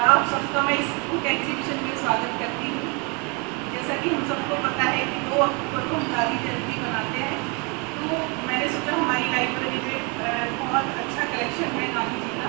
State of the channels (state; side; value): quieter; left; 32.0 dB